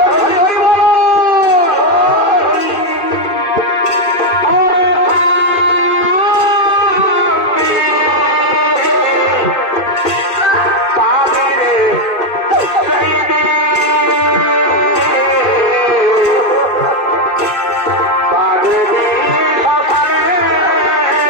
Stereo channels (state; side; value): late; right; 2.5 ms